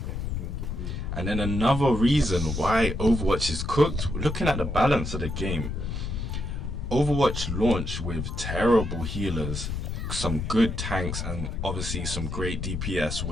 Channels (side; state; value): left; noise; rumble, 4 dB below the sound